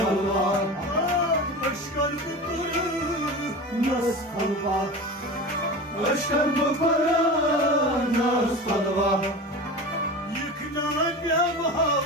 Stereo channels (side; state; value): both; normal; correlation 0.30